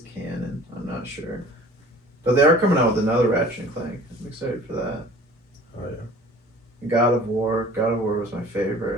canon. I'm not sure. But they are coming out with another Ratchet and Clank. I'm excited for that. Oh, yeah. God of War. God of War was my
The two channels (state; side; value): normal; both; correlation 0.47